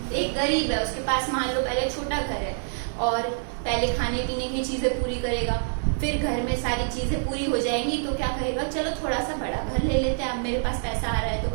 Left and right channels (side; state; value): left; silent; digital silence